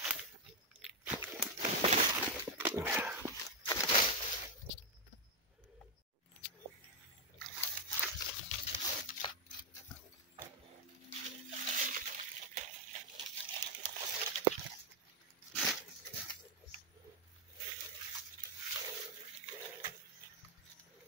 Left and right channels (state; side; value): normal; both; correlation 0.02